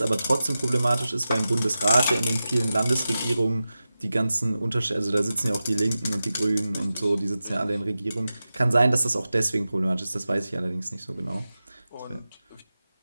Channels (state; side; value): inverted; both; correlation -0.93